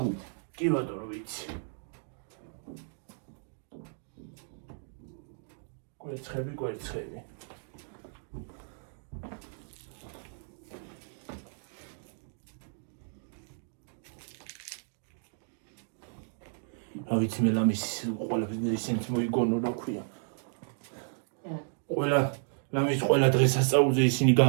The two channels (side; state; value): left; silent; digital silence